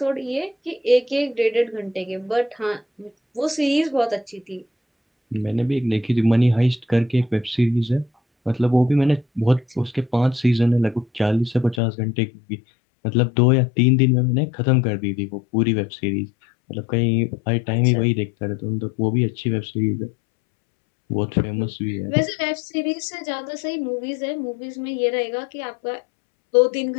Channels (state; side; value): drops out; right; at 11.8 s